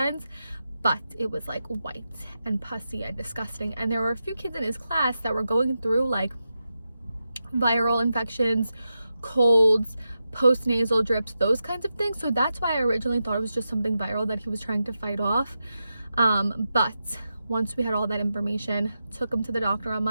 but it was white and pussy and disgusting. And there were a few kids in his class that were going through viral infections, colds, post-nasal drips, those kinds of things. So that's why I originally thought it was just something viral that he was trying to fight off. But once we had all that information, took him to the doctor on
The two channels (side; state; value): both; inverted; correlation -0.89